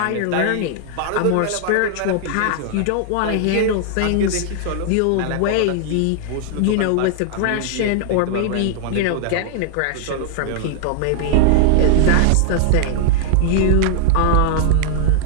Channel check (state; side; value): different; both; correlation -0.01